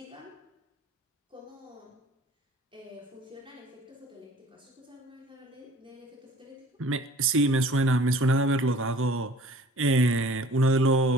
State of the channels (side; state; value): both; normal; correlation 0.49